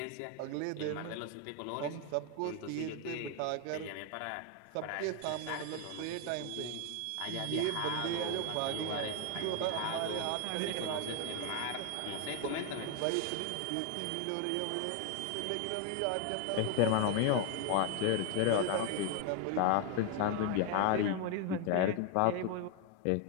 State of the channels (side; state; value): both; different; correlation 0.01